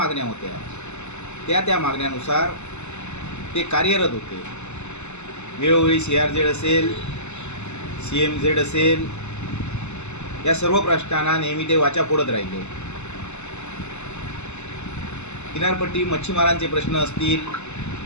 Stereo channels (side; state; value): right; late; 0.82 ms